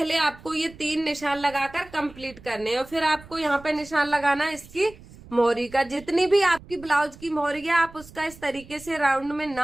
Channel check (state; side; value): noise; right; rumble, 20 dB below the sound